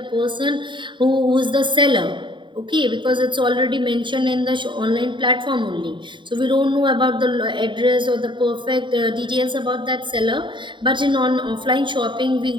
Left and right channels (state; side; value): late; left; 0.23 ms